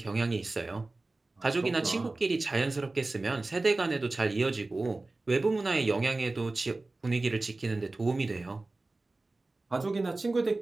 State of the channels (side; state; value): left; quieter; 3.2 dB